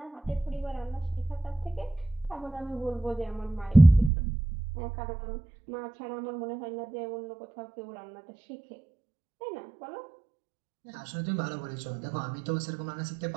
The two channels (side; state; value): left; drops out; at 4.1 s